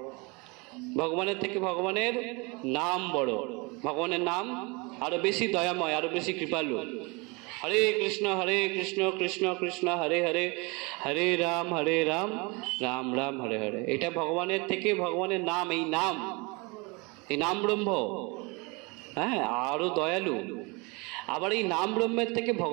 ভগবানের থেকে ভগবানের নাম বড়, ভগবানের নাম আরো বেশি দয়াময়, আরো বেশি কৃপালু। হরে কৃষ্ণ কৃষ্ণ কৃষ্ণ হরে হরে, হরে রাম রাম রাম হরে হরে। এটা ভগবানের থেকে ভগবানের নাম, এই নাম ব্রহ্ম, হ্যাঁ, আরো দয়ালু। আবার এই নাম ব্রহ্মের থেকে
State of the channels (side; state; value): left; quieter; 27.8 dB